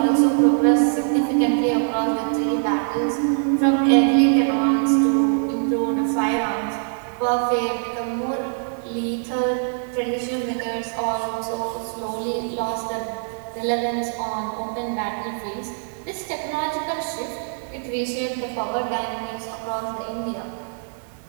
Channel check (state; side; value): silent; left; 63 dB below the other